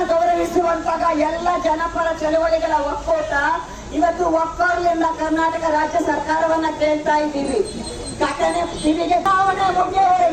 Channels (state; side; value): identical; both; correlation 1.00